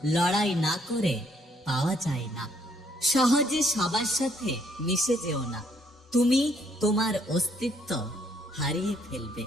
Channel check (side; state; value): both; normal; correlation 0.68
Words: লড়াই না করে পাওয়া যায় না। সহজে সবার সাথে মিশে যেও না, তুমি তোমার অস্তিত্ব হারিয়ে ফেলবে।